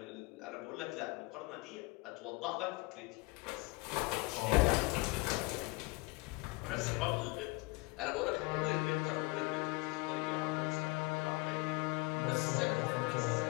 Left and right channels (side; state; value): right; quieter; 24.2 dB